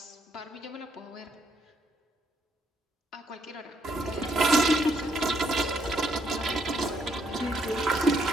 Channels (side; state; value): both; normal; correlation 0.72